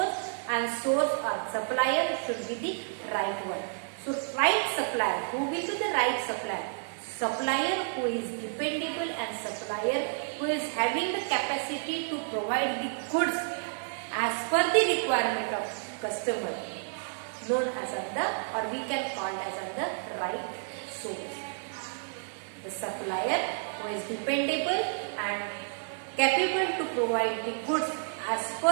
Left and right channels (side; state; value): left; silent; digital silence